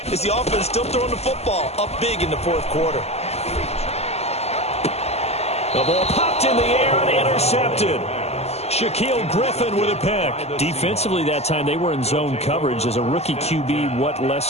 it's the offense still throwing the football up big in the fourth quarter. The ball popped in the air and intercepted. Shaquille Griffin with a pick. Defensively that time, they were in zone coverage. As a rookie QB, what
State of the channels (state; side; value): late; right; 0.30 ms